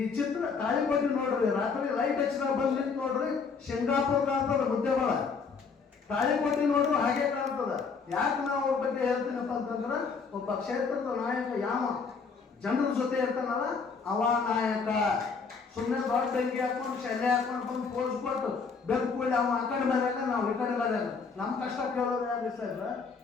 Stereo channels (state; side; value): quieter; right; 5.2 dB